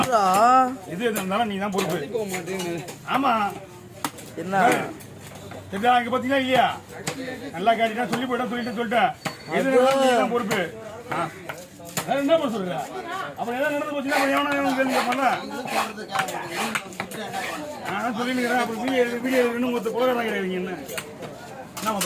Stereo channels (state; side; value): identical; both; correlation 1.00